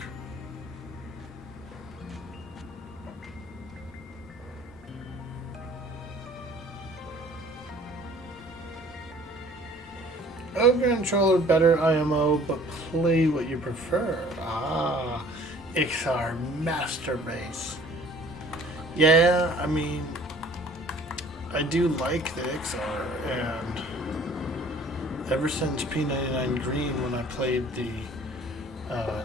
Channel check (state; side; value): normal; both; correlation 0.52